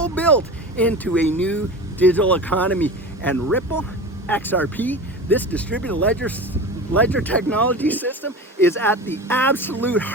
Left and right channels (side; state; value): both; normal; correlation 0.31